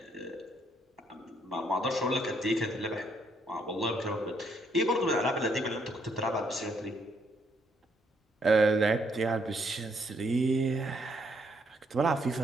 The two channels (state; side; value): normal; both; correlation 0.71